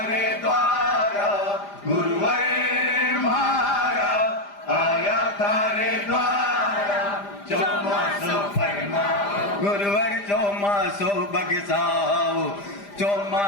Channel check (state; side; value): late; right; 5.0 ms